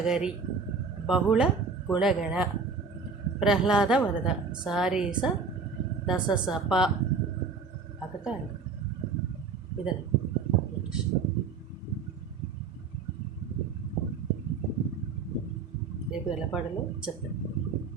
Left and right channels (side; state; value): left; quieter; 4.9 dB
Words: బహుళ గుణగణ ప్రహ్లాద వరద సారీస దశసప అకట. ఇదని రేపు ఎలా పాడాలో చెప్తాను.